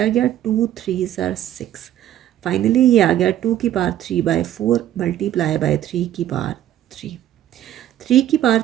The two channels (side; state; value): left; quieter; 12.1 dB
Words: गया 2 3 ज़र 6। फाइनली ये आ गया 2^3/4 मल्टीप्लाई बाय 3^3।